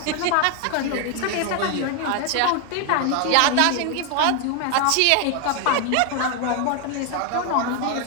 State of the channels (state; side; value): different; both; correlation 0.01